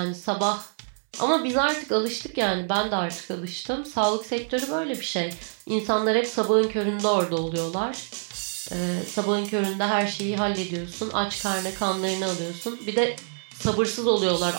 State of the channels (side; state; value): left; silent; digital silence